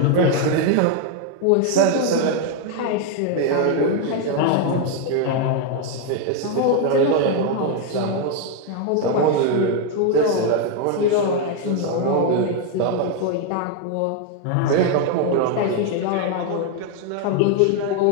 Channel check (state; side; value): different; both; correlation 0.01